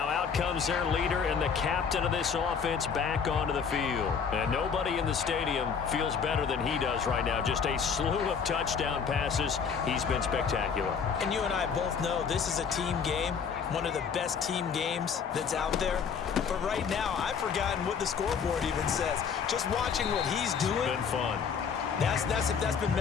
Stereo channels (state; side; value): quieter; right; 6.5 dB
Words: out comes their leader and the captain of this offense back onto the field. And nobody in the stadium feels better than he does right now. Just a slew of touchdown passes. He's been spectacular. And you and I both know this is a team game, one of the best team games that's out there. But right now, I've forgotten what the scoreboard even says. Just watching what he's doing. It's been fun. That's been